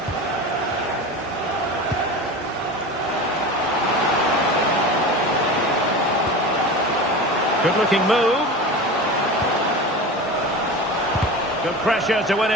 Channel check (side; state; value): both; normal; correlation 0.30